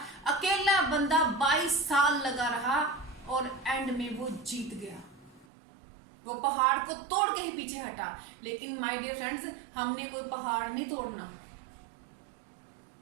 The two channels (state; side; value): drops out; left; at 5.5 s